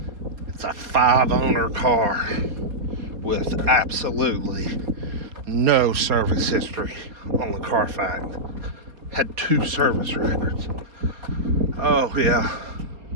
It's a 5-owner car with absolutely no service history on the Carfax. Had 2 service records. Oh yeah,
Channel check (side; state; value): left; late; 4.2 ms